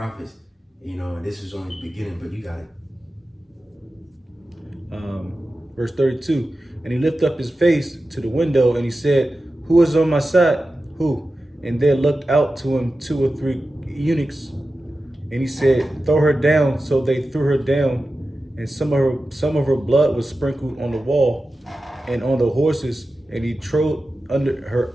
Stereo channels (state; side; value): normal; both; correlation 0.93